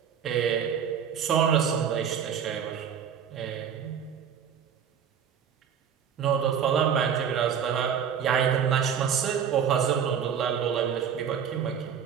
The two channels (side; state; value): left; quieter; 7.9 dB